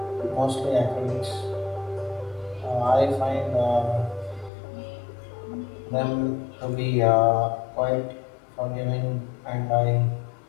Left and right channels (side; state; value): right; drops out; at 4.5 s